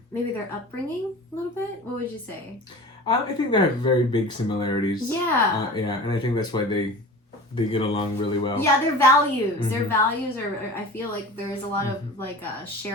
maybe their upbringing a little bit. What would you say? I think they have very big similarities. Yeah. Yeah, and I think that's why they get along really well. Yeah, their values. Their values are. I feel like there's a lot of like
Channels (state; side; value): normal; both; correlation 0.37